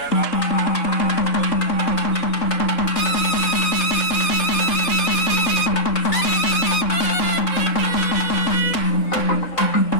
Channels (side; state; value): right; late; 3.6 ms